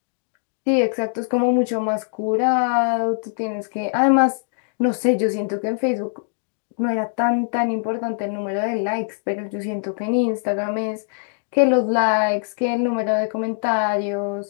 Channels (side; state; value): right; silent; digital silence